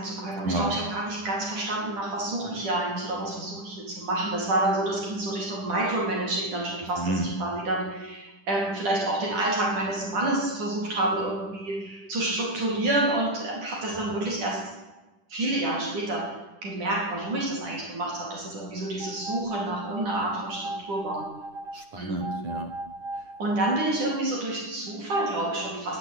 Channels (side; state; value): left; late; 10 ms